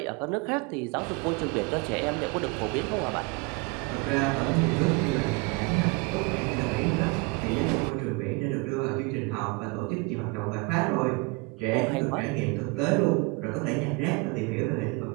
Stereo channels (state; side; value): quieter; left; 27.7 dB